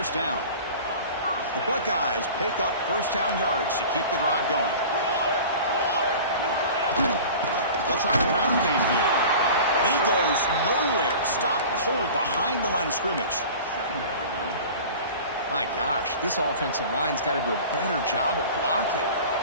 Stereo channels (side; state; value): both; inverted; correlation -0.39